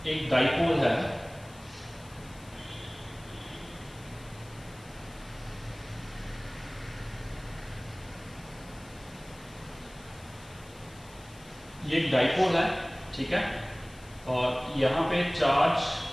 एक डाइपोल है, ये एक डाइपोल है, ठीक है, और यहाँ पे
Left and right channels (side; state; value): left; noise; hiss, 23 dB below the sound